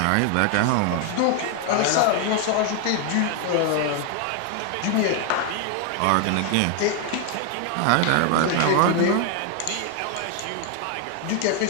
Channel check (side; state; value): both; different; correlation 0.00